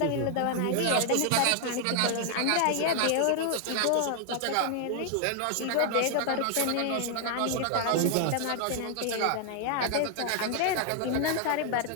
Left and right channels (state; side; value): different; both; correlation 0.00